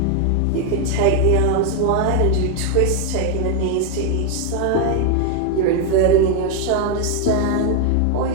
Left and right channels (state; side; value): different; both; correlation 0.01